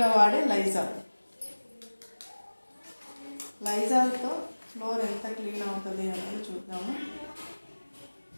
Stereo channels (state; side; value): inverted; both; correlation -1.00